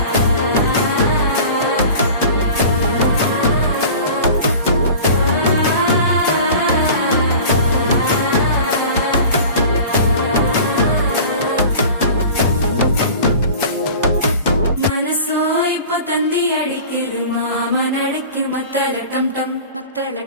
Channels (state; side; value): inverted; both; correlation -0.40